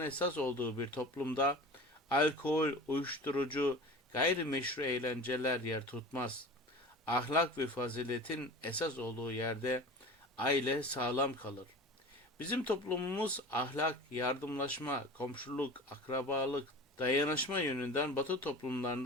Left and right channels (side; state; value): both; normal; correlation 0.36